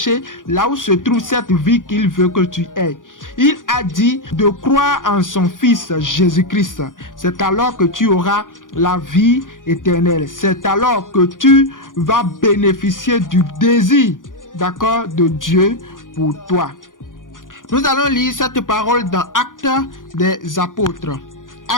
là où se trouve cette vie qu'il veut que tu aies. Il a dit de croire en son Fils Jésus-Christ. C'est alors que tu auras la vie éternelle. C'est alors que tu vas bénéficier du désir, d'accord, de Dieu pour toi. Nous allons lire cette parole dans Actes des Apôtres.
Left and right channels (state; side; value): late; right; 0.88 ms